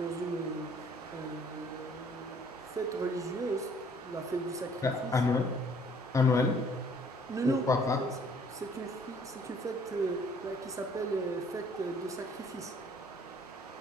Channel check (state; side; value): normal; both; correlation 0.59